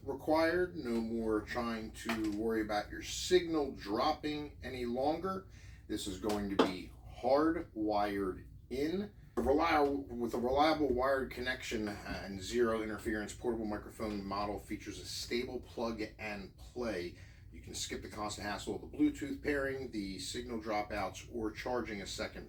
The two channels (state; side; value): identical; both; correlation 1.00